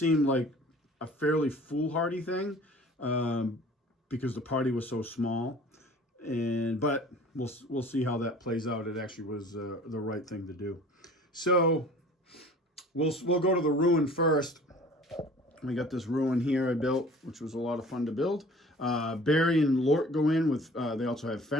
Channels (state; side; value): normal; both; correlation 0.47